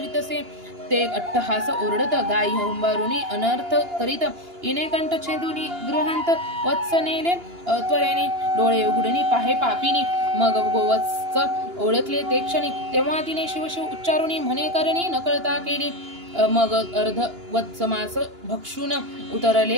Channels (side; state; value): left; late; 2.9 ms